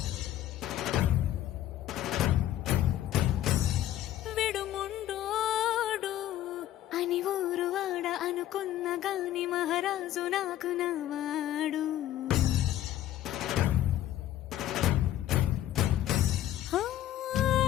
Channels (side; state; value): right; quieter; 12.7 dB